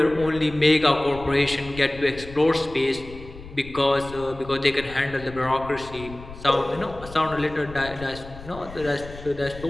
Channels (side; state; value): left; noise; rumble, 15 dB below the sound